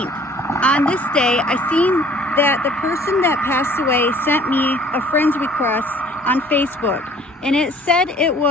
on this day, I seen that the person that passed away sent me a friend's request on Facebook, and it said it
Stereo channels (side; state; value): both; normal; correlation 0.54